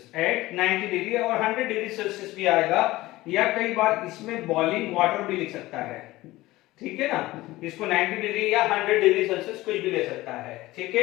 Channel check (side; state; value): right; quieter; 18.2 dB